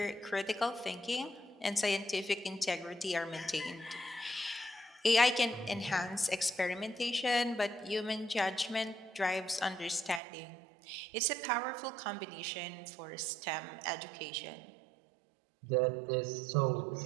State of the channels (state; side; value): drops out; left; at 10.2 s